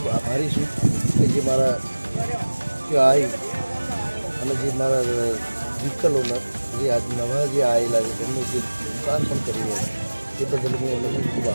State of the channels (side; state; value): both; inverted; correlation -1.00